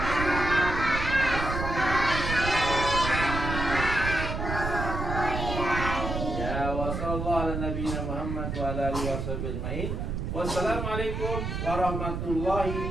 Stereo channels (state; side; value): noise; right; rumble, 3 dB below the sound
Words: Ya wa sallallahu ala nabiyina Muhammad wa ala alihi washabihi ajmain. Wassalamualaikum